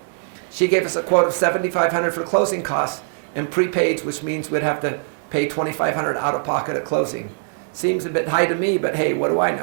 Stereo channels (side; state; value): left; silent; digital silence